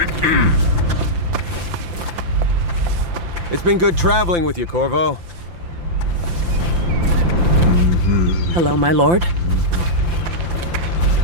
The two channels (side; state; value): left; late; 5.8 ms